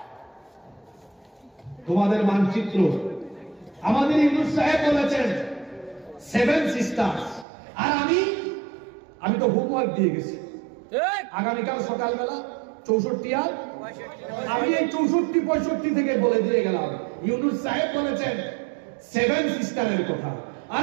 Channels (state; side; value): drops out; left; at 7.5 s